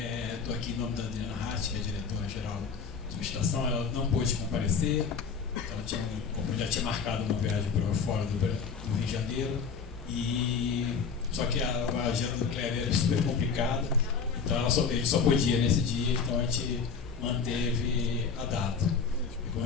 aqui em nome da Adriana Hart, que é a diretora-geral da estação. Ela não pôde comparecer, então já tinha marcado uma viagem para fora do Rio de Janeiro. Só que a agenda do Kleber era super complicada, então ele só podia nesse dia, então a gente manteve a data. E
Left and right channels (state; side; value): quieter; right; 5.8 dB